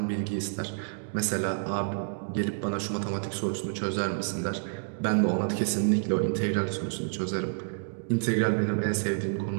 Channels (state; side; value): silent; left; digital silence